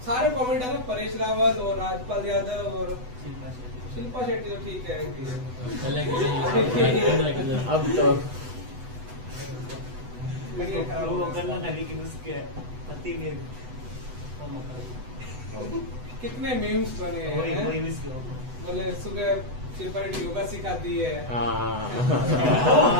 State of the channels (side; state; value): left; late; 8.0 ms